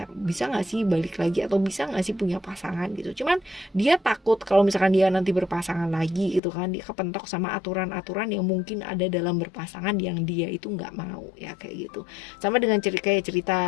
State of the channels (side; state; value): right; drops out; at 6.4 s